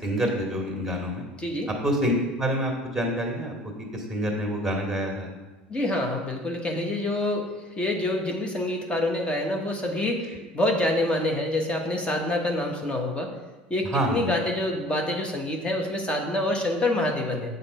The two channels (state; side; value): normal; both; correlation 0.52